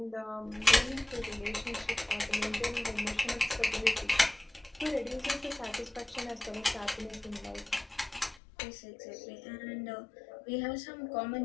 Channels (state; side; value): drops out; right; at 8.4 s